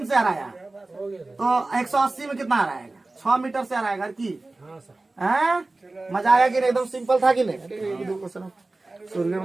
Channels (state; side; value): quieter; left; 3.1 dB